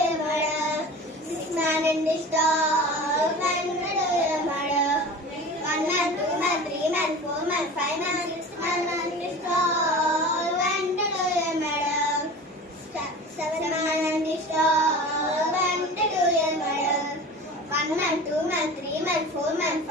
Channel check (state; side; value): normal; both; correlation 0.36